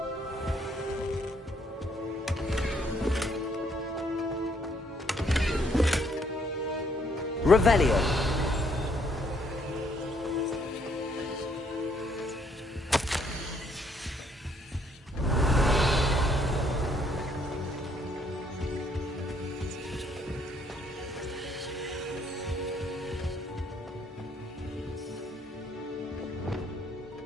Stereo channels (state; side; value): normal; both; correlation 0.68